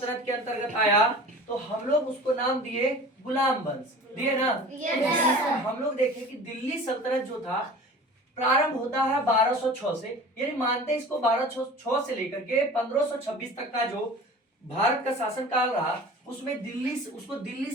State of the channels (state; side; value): normal; both; correlation 0.40